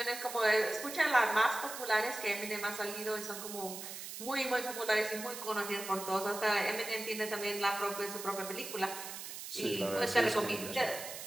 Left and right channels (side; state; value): right; noise; hiss, 9 dB below the sound